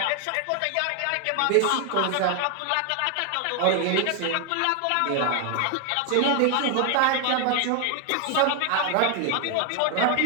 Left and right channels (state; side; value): different; both; correlation 0.00